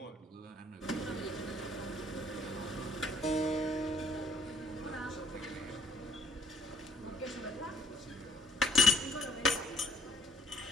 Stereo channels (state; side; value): normal; both; correlation 0.61